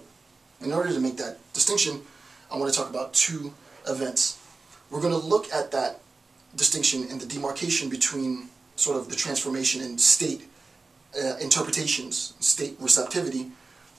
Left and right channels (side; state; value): left; quieter; 3.9 dB